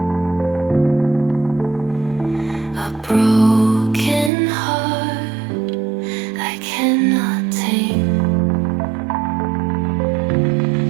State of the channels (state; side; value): drops out; left; at 4.3 s